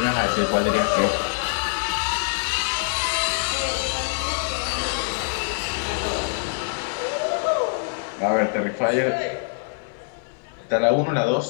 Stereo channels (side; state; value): right; silent; 62 dB below the other